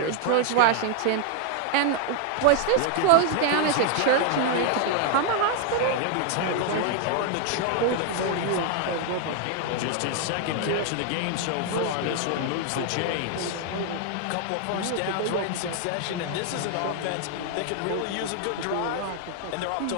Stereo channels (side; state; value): both; different; correlation 0.00